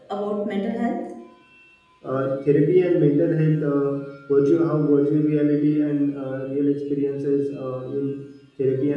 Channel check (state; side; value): identical; both; correlation 1.00